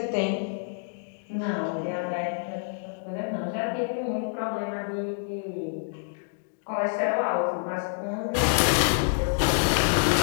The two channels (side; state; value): right; silent; digital silence